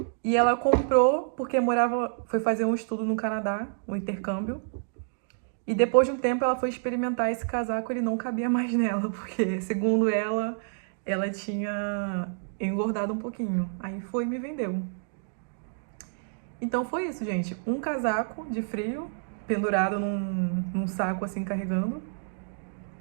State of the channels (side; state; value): left; silent; digital silence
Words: E ela comprou porque foi fazer um estudo no Canadá, um intercâmbio. E depois de um tempo ela foi experimentar esse casaco, ele não cabia mais nela, porque segundo ela tinha engordado um pouquinho. Aí foi e me vendeu. Então foi isso, gente. Um casaco de frio, pendurado num saco assim, carregando.